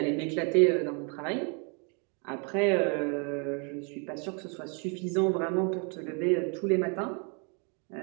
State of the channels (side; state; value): left; quieter; 37.2 dB